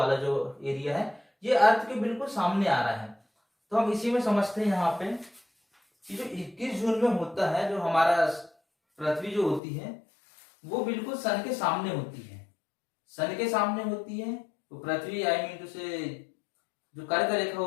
जो एरिया है, ये अर्थ के बिल्कुल सामने आ रहा है। तो हम इसी में समझते हैं यहाँ पे कि जो 21 जून में होता है, जो हमारा पृथ्वी जो होती है वो बिल्कुल सन के सामने होती है, सन के सामने होती है। तो पृथ्वी आई मीन टू से जो कर्क रेखा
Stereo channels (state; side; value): drops out; right; at 9.6 s